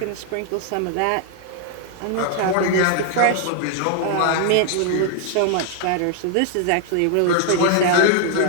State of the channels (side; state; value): both; different; correlation 0.00